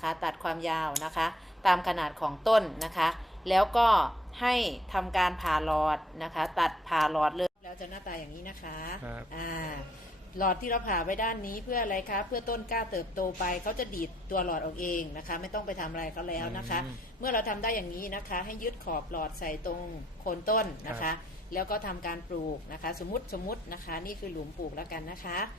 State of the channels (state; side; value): normal; both; correlation 0.67